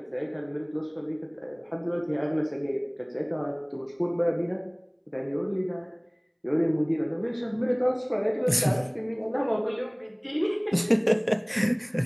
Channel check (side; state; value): both; identical; correlation 1.00